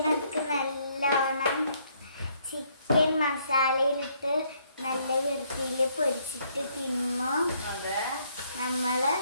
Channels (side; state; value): both; inverted; correlation -0.69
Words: നല്ലോണം ചിക്കൻ മസാലയിലിട്ട് നല്ല വൃത്തിയിൽ പൊരിച്ചിട്ട് തിന്നു നമ്മള്.